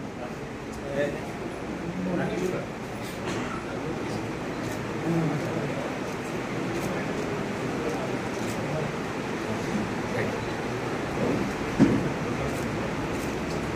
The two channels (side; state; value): both; identical; correlation 1.00